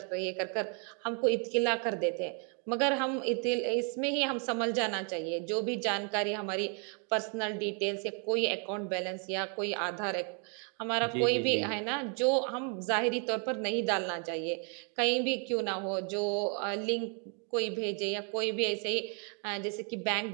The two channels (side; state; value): left; quieter; 39.8 dB